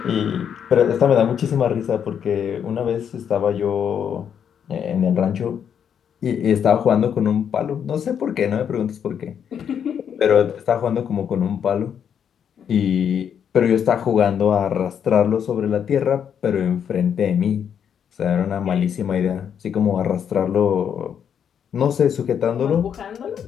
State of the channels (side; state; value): right; quieter; 8.2 dB